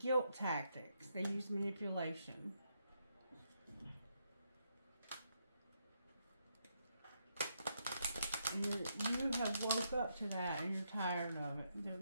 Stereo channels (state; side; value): inverted; both; correlation -0.79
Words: tactics. They use manipulation. You have woke up to that and you're tired of it. It